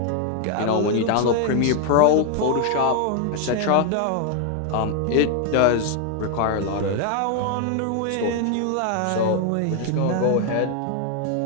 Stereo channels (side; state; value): both; different; correlation 0.01